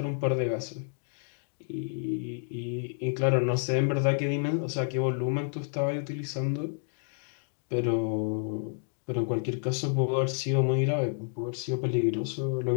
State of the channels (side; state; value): right; silent; digital silence